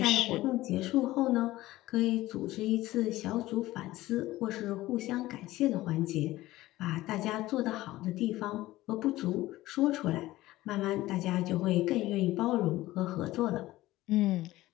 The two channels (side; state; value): right; quieter; 17.0 dB